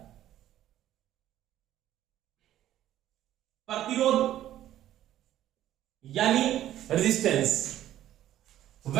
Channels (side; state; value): left; quieter; 12.6 dB